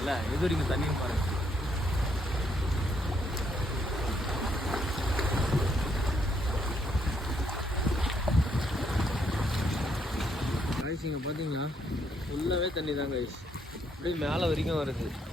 எது வரைக்கும் தண்ணியும் பாருங்கள். காய்ஸ் இங்கே பார்த்தீங்களா ஃபுல்லாகவே தண்ணி தான் காய்ஸ், அப்படியே மேலே வரைக்கும் வருது.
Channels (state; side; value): normal; both; correlation 0.73